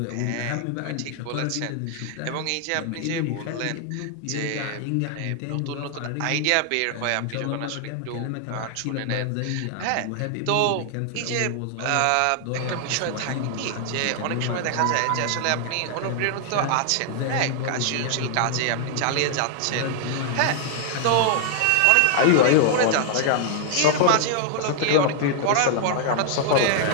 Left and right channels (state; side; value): different; both; correlation 0.00